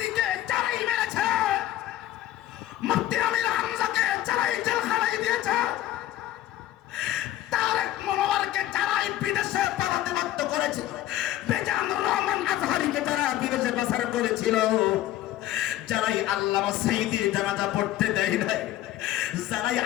যারাই মেরেছে, মুফতি আমির হামজাকে যারাই জেলখানায় দিয়েছে, তারেক মনোয়ারকে যারাই বিদেশে পালাতে বাধ্য করেছে, বেজানুর রহমান আজহারীকে যারা বিদেশে পাচার করেছিল, যারাই আল্লামা সাঈদীর জানাজা পড়তে দেয় নাই, যারাই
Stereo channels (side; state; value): right; quieter; 13.8 dB